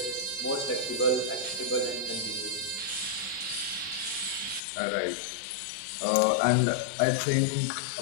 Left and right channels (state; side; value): drops out; right; at 4.6 s